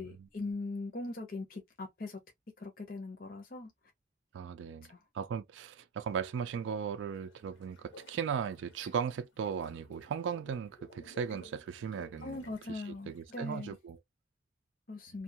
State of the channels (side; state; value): left; quieter; 4.2 dB